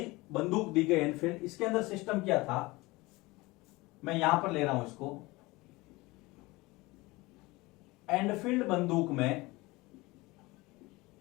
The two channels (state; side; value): quieter; right; 22.0 dB